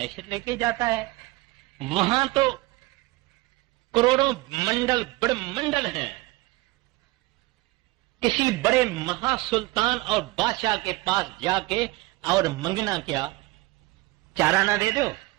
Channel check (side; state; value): left; quieter; 21.6 dB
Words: लेके जाता है। वहां तो करोड़ों मंडल बड़े मंडल हैं। किसी बड़े महासुल्तान और बादशाह के पास जाके और मंगना क्या, चाराना दे दो,